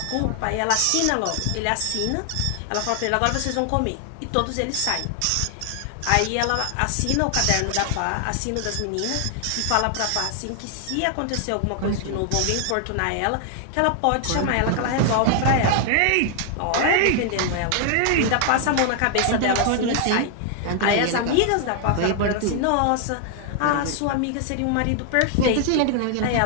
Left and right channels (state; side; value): different; both; correlation 0.00